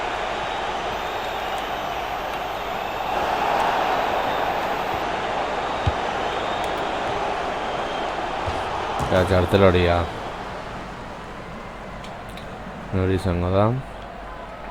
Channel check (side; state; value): both; identical; correlation 1.00